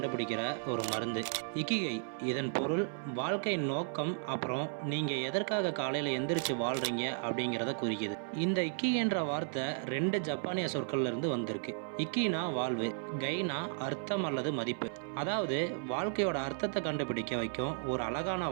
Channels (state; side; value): silent; left; 55 dB below the other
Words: ஒரு மருந்து. இக்கிகை இதன் பொருள் வாழ்க்கையின் நோக்கம், அப்புறம் நீங்கள் எதற்காக காலையில் எந்திரிச்சு வாழ்கிறீங்க அப்படிங்கிறத குறிக்குது. இந்த இக்கிகைன்ற வார்த்தை 2 ஜப்பானிய சொற்கள்ல இருந்து வந்திருக்கு. இக்கினா வாழ்வு, கைனா அர்த்தம் அல்லது மதிப்பு. அதாவது வாழ்க்கையோட அர்த்தத்தை கண்டுபிடிக்க வைக்கும் ஒரு அழகான